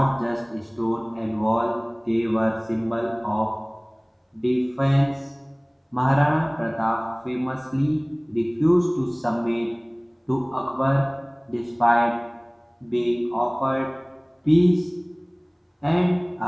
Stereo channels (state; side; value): identical; both; correlation 1.00